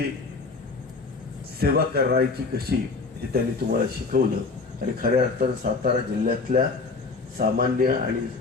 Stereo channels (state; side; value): quieter; right; 4.1 dB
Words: सेवा करायची कशी हे त्यांनी तुम्हाला शिकवलं आणि खऱ्या अर्थानं सातारा जिल्ह्यातल्या सामान्य आणि